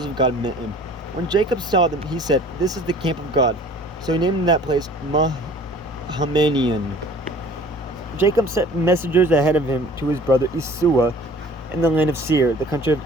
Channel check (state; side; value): normal; both; correlation 0.49